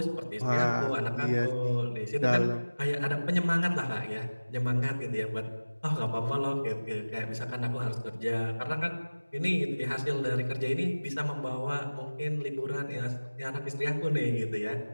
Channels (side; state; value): both; inverted; correlation -1.00